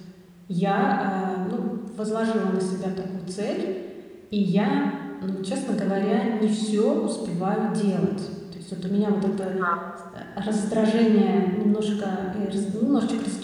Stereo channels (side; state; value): both; identical; correlation 1.00